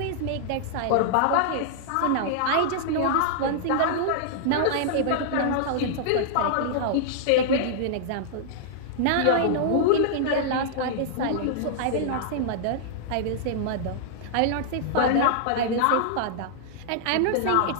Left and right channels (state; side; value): different; both; correlation -0.01